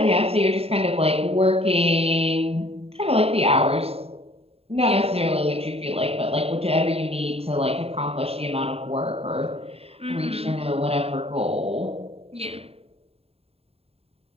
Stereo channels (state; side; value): late; left; 0.29 ms